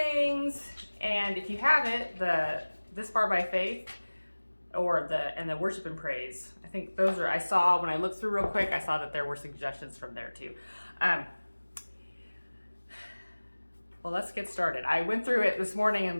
And if you have it, the This Far by Faith or the Worship and Praise. I think those are, I saw when I looked through real quick, I saw that there were suggestions from there too. Well, let's get started. I went through it this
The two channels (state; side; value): inverted; both; correlation -1.00